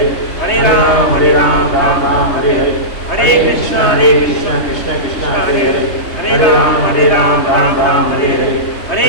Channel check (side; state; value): right; late; 3.2 ms